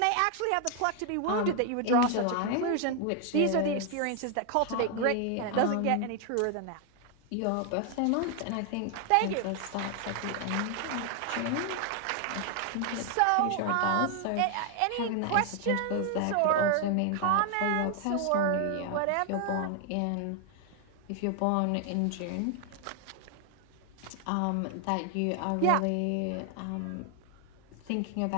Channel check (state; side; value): different; both; correlation 0.00